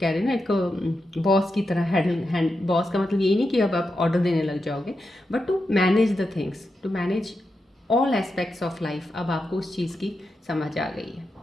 रहे हैं ना, एक बॉस की तरह बॉस का मतलब यही नहीं कि अब आप ऑर्डर देने लग जाओगे, but to manage the things, to manage all aspects of life. अब आपको उस चीज़ की समझ आ गई है।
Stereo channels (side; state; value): both; normal; correlation 0.88